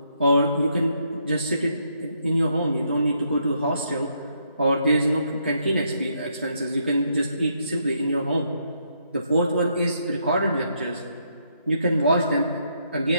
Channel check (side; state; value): both; inverted; correlation -0.75